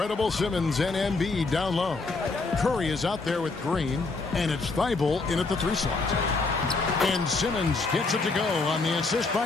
Simmons and Embiid down low. Curry is out there with Green. And it's Thibault in at the 3 slot. And Simmons gets it to go on the assist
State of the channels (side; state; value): right; quieter; 3.8 dB